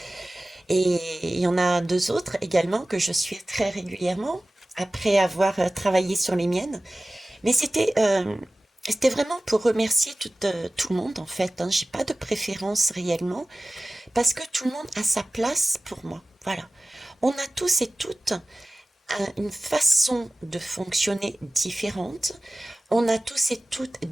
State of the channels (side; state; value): both; normal; correlation 0.96